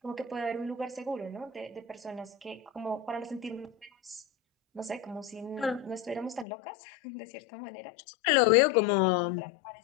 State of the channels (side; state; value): right; drops out; at 6.5 s